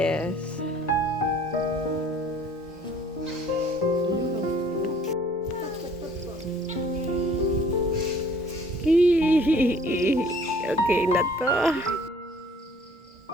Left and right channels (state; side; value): normal; both; correlation 0.55